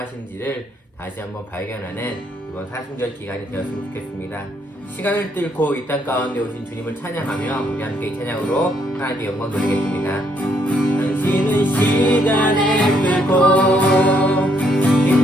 다시 한번 발견하는 이번 사순절 기간이 되었으면 좋겠습니다. 시간을 뚫고 이 땅 가운데 오신 주님을 찬양하며 우리 함께 이 찬양으로 하나님께 영광 돌리겠습니다. 당신은 시간을 뚫고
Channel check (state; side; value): normal; both; correlation 0.71